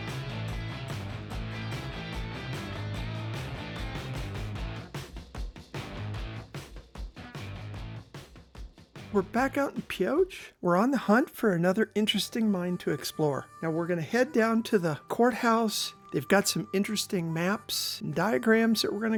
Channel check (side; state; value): both; identical; correlation 1.00